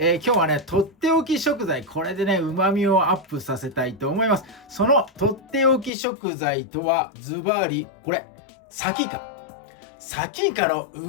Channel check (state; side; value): drops out; right; at 5.9 s